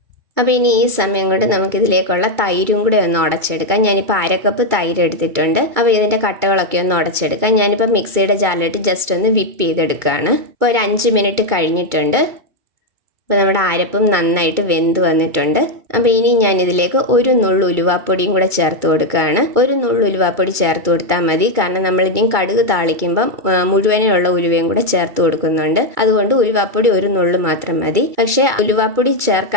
അപ്പോൾ ഇനി ഈ സമയം കൊണ്ട് നമുക്കിതിലേക്കുള്ള തൈരും കൂടെ ഒന്ന് ഉടച്ചെടുക്കാം. ഞാനിപ്പോൾ 1/2 കപ്പ് തൈര് എടുത്തിട്ടുണ്ട്. അപ്പോൾ ഇതിൻ്റെ കട്ടകളൊക്കെ ഒന്ന് ഉടച്ചെടുക്കാം. ഞാനിപ്പോൾ മിക്സിയുടെ ജാറിലിട്ട് ജസ്റ്റ് ഒന്ന് വിപ്പ് ചെയ്തെടുക്കുകയാണ്. ഇപ്പോൾ ഒരു 5 മിനിറ്റ് കഴിഞ്ഞിട്ടുണ്ട്. അപ്പോൾ നമ്മുടെ അരപ്പും നന്നായിട്ട് വെന്ത് വന്നിട്ടുണ്ട്. അപ്പോൾ ഇനി ഞാനിതിലേക്ക് ഒരു നുള്ളു ഉലുവാപ്പൊടിയും കൂടെ ചേർത്ത് കൊടുക്കുകയാണ്. ഒരു നുള്ളു ഉലുവാപ്പൊടി ചേർത്ത് കൊടുത്താൽ മതി, കാരണം നമ്മളിനി കടുക് താളിക്കുമ്പം മുഴുവനുള്ള ഉലുവയും കൂടെ ചേർത്ത് കൊടുക്കുന്നുണ്ട്. അതുകൊണ്ട് ഉലുവാപ്പൊടി ഒരു നുള്ളു മാത്രം മതി. പക്ഷേ ഉലുവാപ്പൊടി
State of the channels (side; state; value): left; late; 2.2 ms